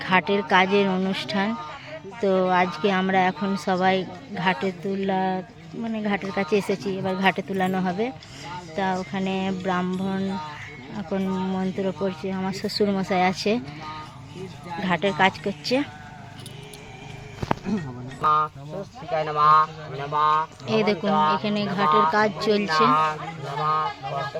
ঘাটের কাজের অনুষ্ঠান। তো আজকে আমরা এখন সবাই ঘাটে ঘাটের কাছে এসেছি। এবার ঘাটে তুলানো হবে। তা ওখানে ব্রাহ্মণ এখন মন্ত্র পড়ছে। আমার শ্বশুর মশাই আছে, ঘাটের কাজ করছে। এই দেখুন, এখানে ঘাটের কাজ চলছে।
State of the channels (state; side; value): identical; both; correlation 1.00